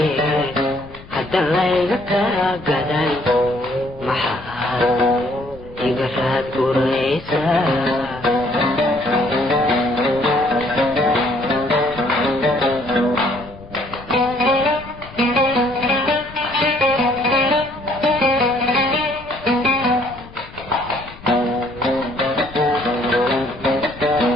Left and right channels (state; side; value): noise; left; rumble, 20 dB below the sound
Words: hadda layga ka gaday maxaa igaraad guraysa